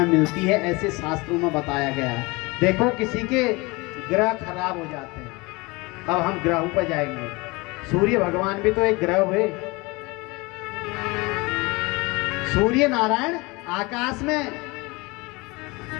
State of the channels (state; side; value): quieter; right; 24.8 dB